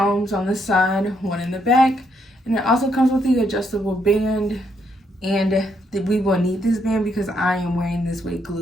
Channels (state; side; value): normal; both; correlation 0.75